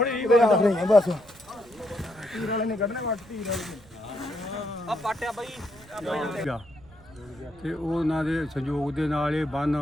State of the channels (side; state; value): right; noise; rumble, 25 dB below the sound